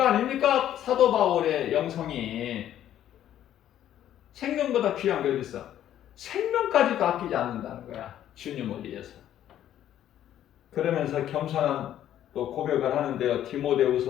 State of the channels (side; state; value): right; quieter; 11.4 dB